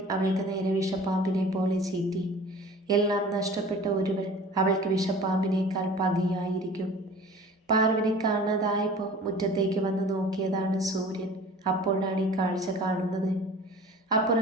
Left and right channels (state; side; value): normal; both; correlation 0.43